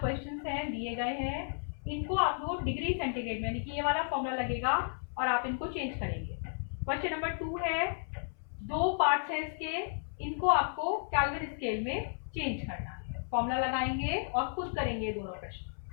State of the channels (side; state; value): right; silent; 55 dB below the other